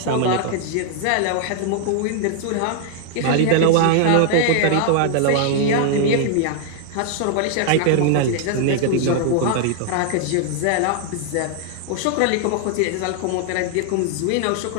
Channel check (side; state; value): both; different; correlation 0.00